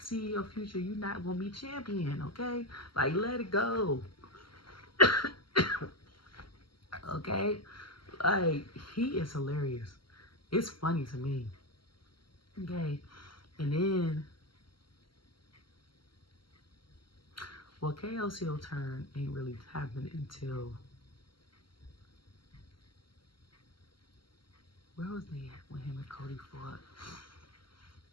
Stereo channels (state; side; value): late; right; 0.73 ms